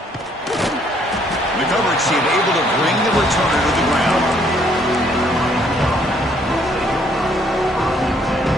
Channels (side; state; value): both; normal; correlation 0.66